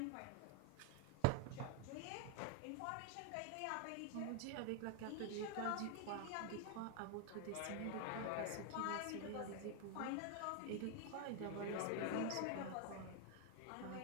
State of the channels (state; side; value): different; both; correlation 0.00